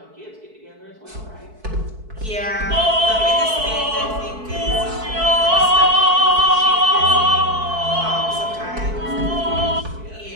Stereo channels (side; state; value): left; late; 4.6 ms